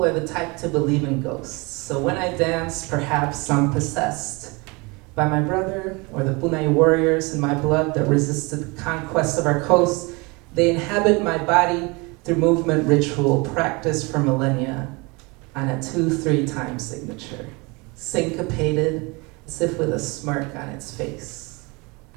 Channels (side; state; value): left; quieter; 27.2 dB